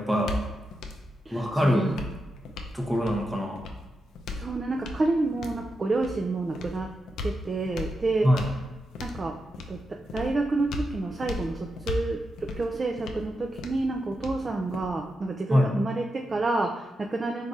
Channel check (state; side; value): normal; both; correlation 0.87